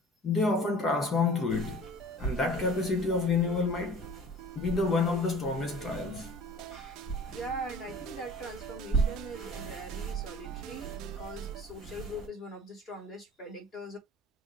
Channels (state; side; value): normal; both; correlation 0.44